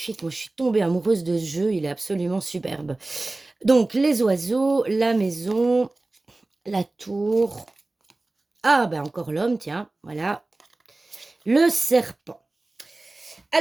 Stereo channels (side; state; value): left; quieter; 3.0 dB